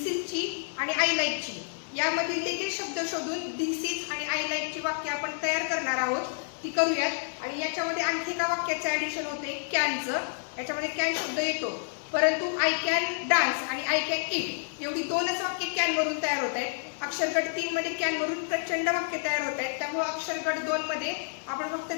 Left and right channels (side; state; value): right; silent; 58 dB below the other